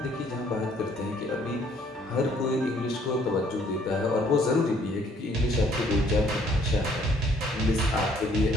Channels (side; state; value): both; normal; correlation 0.62